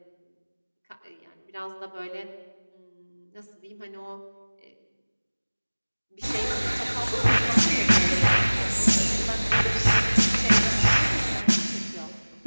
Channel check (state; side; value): inverted; both; correlation -1.00